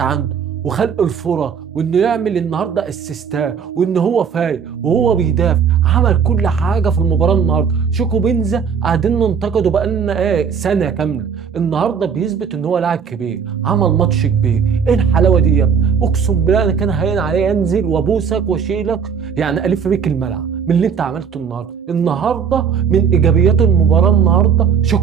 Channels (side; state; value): left; quieter; 6.7 dB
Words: وخلق الفرص، وانه يعمل النهارده اسيستات، وان هو فايق وهو بيدافع. عمل كل حاجه في المباراه النهارده. شيكو بنزا قاعدين ننتقده بقالنا سنه كامله، النهارده بيثبت ان هو لاعب كبير، عمل ماتش كبير. ايه الحلاوه دي يا ابني؟ اقسم بالله انا كان هين عليا انزل وابوسك واشيلك، يعني الف بيك الملعب من اللي انت عملته النهارده. من ايجابيات المباراه النهارده